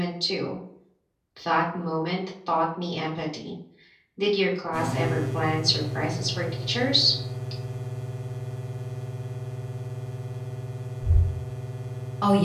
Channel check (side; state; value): both; identical; correlation 1.00